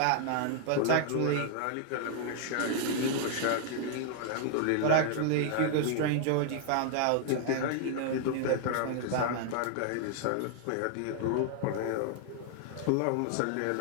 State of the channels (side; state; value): both; different; correlation 0.00